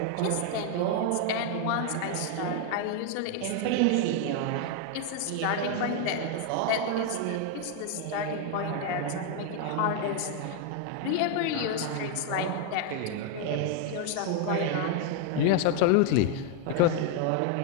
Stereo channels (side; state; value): both; different; correlation 0.01